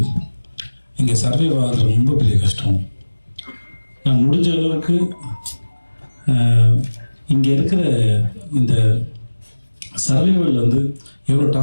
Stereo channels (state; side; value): inverted; both; correlation -1.00